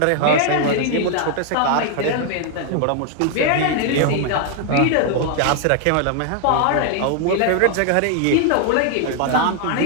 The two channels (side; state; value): both; different; correlation 0.00